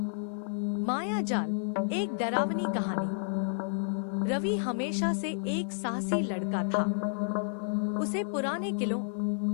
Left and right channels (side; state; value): right; silent; digital silence